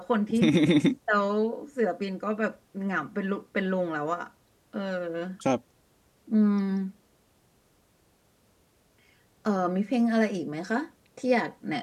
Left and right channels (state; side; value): identical; both; correlation 1.00